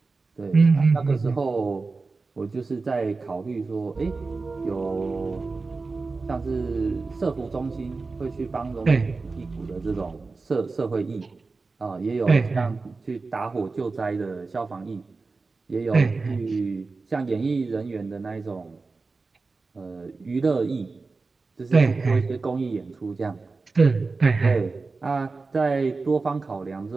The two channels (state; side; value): quieter; left; 4.0 dB